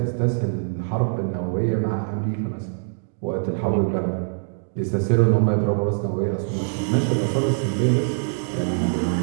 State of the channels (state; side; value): silent; left; digital silence